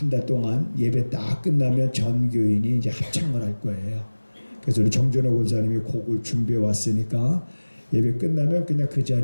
달 동안 예배 딱 끝나면 전 교인이 이제 합창을 할 거예요. 그래서 우리 정준호 권사님이 곡을 준비해 왔으니까 예배 끝나면 그냥 그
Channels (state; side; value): inverted; both; correlation -1.00